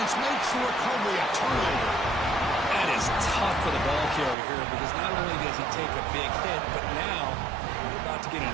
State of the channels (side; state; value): left; drops out; at 4.4 s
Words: makes the recovery a turnover. That is tough for the ball carrier here, because not only does he take a big hit, but now you're about to get